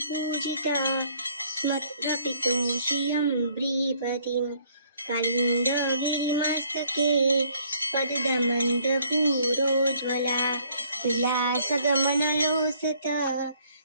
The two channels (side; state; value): both; inverted; correlation -0.63